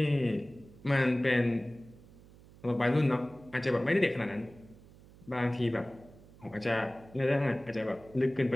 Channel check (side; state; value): right; noise; hum, 23 dB below the sound